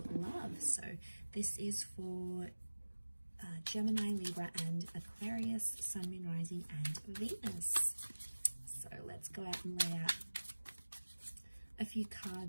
love. So this is for Gemini, Libra, and Aquarius, Sun, Moon, Rising, and Venus. So let's go out and lay out a few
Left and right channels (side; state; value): both; inverted; correlation -1.00